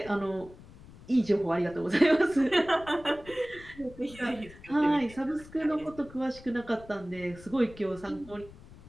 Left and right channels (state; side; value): noise; left; rumble, 19 dB below the sound